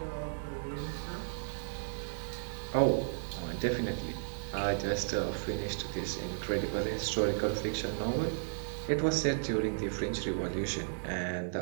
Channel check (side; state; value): left; silent; 55 dB below the other